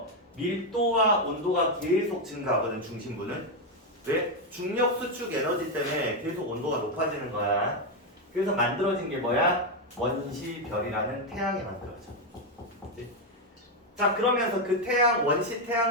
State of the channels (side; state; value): both; normal; correlation 0.05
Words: 밀도와 온도가 계속 증가하거든, 중심부는. 왜? 중력 수축 에너지 때문에 계속 온도가 높아지는 거야. 그래서 만들어진 게 뭐야? 원시별이라는 태양이 만들어져. 그치? 자, 그러면서 그 태양, 원시